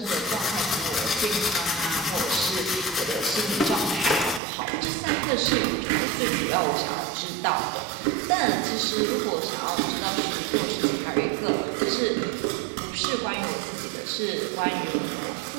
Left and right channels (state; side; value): drops out; left; at 4.4 s